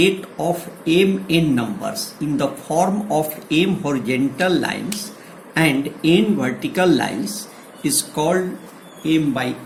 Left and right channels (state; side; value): identical; both; correlation 1.00